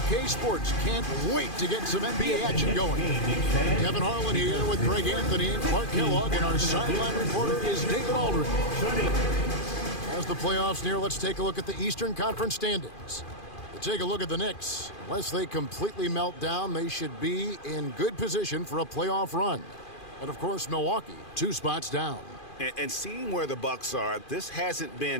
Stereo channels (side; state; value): right; late; 2.4 ms